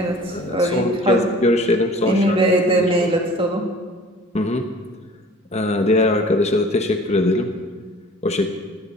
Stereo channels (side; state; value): both; normal; correlation 0.47